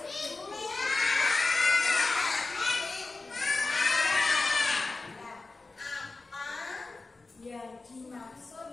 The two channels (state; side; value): quieter; right; 3.6 dB